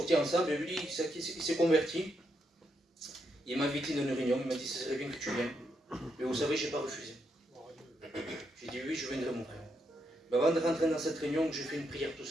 ensemble, et lui, il s'est converti. Il m'a invité dans une réunion, il m'a dit, ce serait bien que tu viennes. Mais vous savez, je n'ai pas refusé. J'ai dit, oui, je viendrai, mon frère. Mais avant de rentrer dans cette réunion, j'ai fait une prière tout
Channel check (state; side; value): normal; both; correlation 0.80